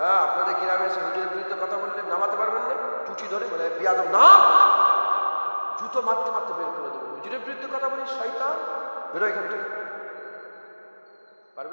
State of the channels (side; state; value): both; inverted; correlation -1.00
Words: আপনাদের গ্রামে এসে হুজুরের বিরুদ্ধে কথা বললে নামাতে পারবেন না? টুটি ধরে বলে বিয়াদব না, জুতো মারতে মারতে বের করে দেবে। হুজুরের বিরুদ্ধে কথা বলি, শয়তান বেরো এখান থেকে।